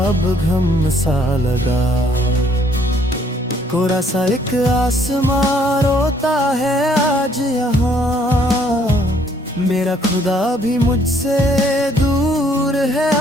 अब गम सा लगा। कोरा सा एक आसमां रोता है आज यहाँ, मेरा खुदा भी मुझसे दूर है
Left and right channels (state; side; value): normal; both; correlation 0.64